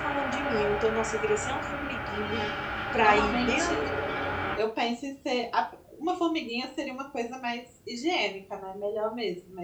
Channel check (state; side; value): identical; both; correlation 1.00